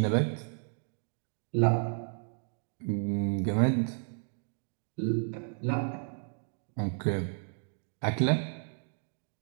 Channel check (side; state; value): left; silent; 56 dB below the other